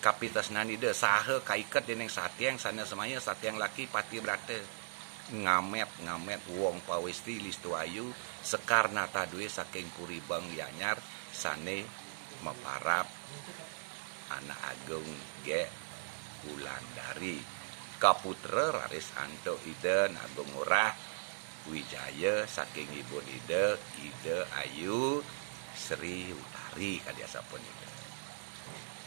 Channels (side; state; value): left; silent; digital silence